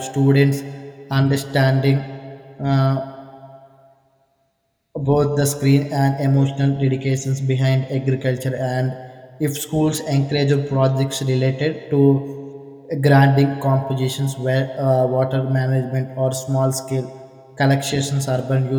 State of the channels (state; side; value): identical; both; correlation 1.00